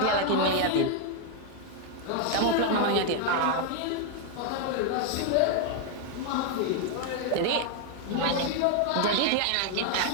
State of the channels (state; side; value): different; both; correlation 0.00